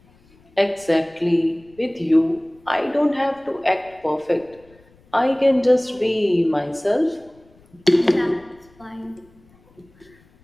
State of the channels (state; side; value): noise; left; rumble, 30 dB below the sound